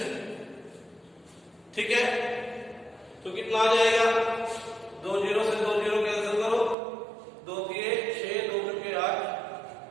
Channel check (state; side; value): drops out; left; at 6.8 s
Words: ठीक है। तो कितना आ जाएगा 2 0 से 2 0 कैंसिल करो, 2 दिए 6 2 के 8